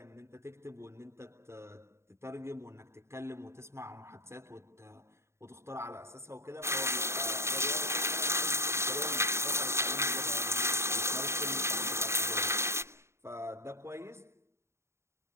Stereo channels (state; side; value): late; left; 0.13 ms